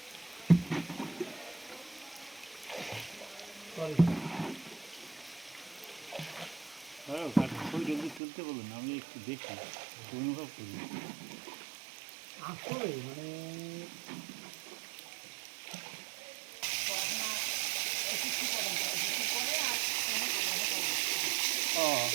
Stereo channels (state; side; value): drops out; left; at 8.2 s